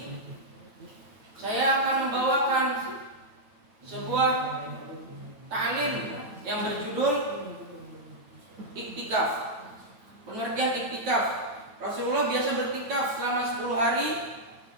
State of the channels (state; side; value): late; left; 9.0 ms